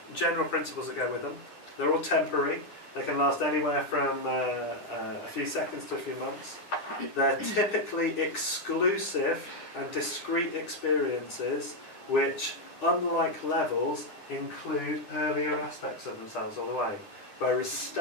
general principles that go with them. They're all temporary. They can last anywhere from a few seconds to a few months. They're typically exclusive and discrete experiences which, unlike levels, include earlier aspects of themselves all the way. Whereas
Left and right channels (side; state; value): right; late; 9.9 ms